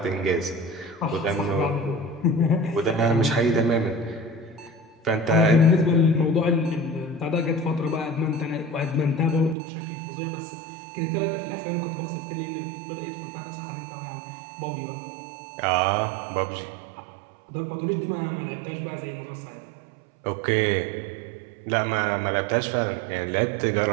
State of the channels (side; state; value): left; drops out; at 9.6 s